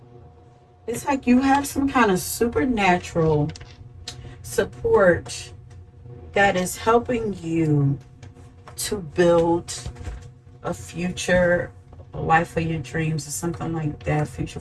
like you have some kind of supernatural support that is helping you to build a future, a life of your dreams, or something like that, future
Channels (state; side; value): identical; both; correlation 1.00